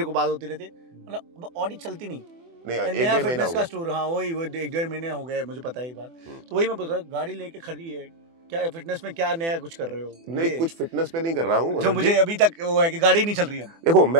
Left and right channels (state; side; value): late; left; 24 ms